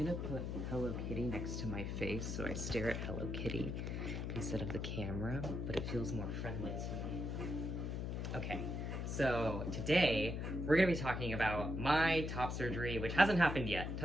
gonna put Hello Kitty next to my face so I stare at Hello Kitty instead of the camera, but it feels more friendly to me. Okay, so today we're gonna be talking about my top surgery, which hasn't happened yet,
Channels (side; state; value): left; noise; hum, 3 dB below the sound